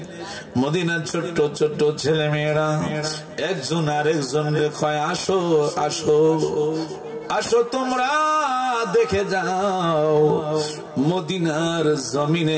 মদিনার ছোট্ট ছোট্ট ছেলে মেয়েরা একজন আরেকজনকে কয়, আসো আসো আসো তোমরা দেখে যাও, মদিনার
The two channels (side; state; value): both; identical; correlation 1.00